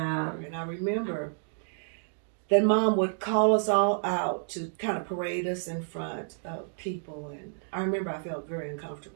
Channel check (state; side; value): silent; left; digital silence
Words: I remember that Mom would call us all out to kind of parade us in front of people. And I remember I felt very